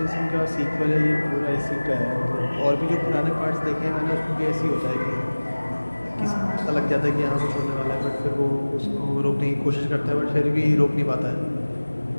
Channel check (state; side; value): inverted; both; correlation -1.00